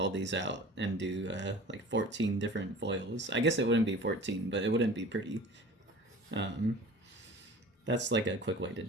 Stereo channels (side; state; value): both; normal; correlation 0.42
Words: these out and do like 14 different FOILs. I guess it wouldn't be 14, but it wouldn't be pretty. That's like a quick way to